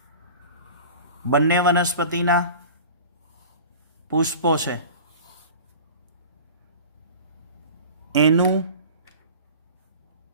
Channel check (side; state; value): both; inverted; correlation -0.39